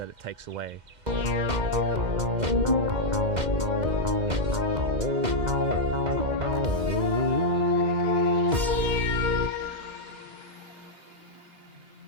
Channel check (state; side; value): late; left; 2.1 ms